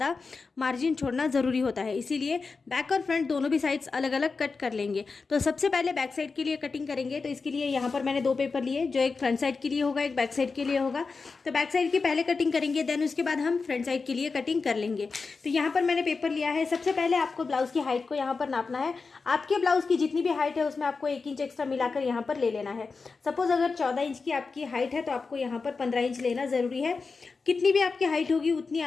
मार्जिन छोड़ना ज़रूरी होता है, इसीलिए बैक और फ्रंट दोनों भी साइड्स अलग अलग कट कर लेंगे। तो सबसे पहले बैक साइड के लिए कटिंग करेंगे। तो इसके लिए यहाँ पर मैंने 2 पेपर लिए, जो एक फ्रंट साइड के लिए होगा, एक बैक साइड के लिए होगा। तो बैक साइड की पहले कटिंग करेंगे, देन उसके बाद हम फ्रंट साइड के लिए कटिंग कर लेंगे। तो यहाँ पर मैंने पेपर लिया है। सबसे पहले आपको ब्लाउज की हाइट को यहाँ पर नापना है। आपके ब्लाउज की जितनी भी हाइट है उसमें आपको 1 इंच एक्स्ट्रा मिलाकर यहाँ पर ले लेना है। सपोज अगर 14 इंच की आपकी हाइट है तो आपको यहाँ पर 15 इंच लेना ज़रूरी है। कितनी भी आपकी हाइट होगी उतनी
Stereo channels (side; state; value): right; quieter; 4.5 dB